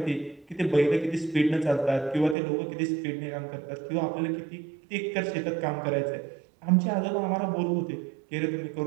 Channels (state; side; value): drops out; left; at 2.4 s